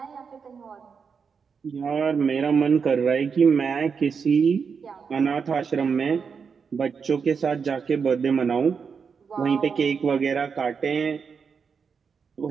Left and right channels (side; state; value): left; quieter; 5.9 dB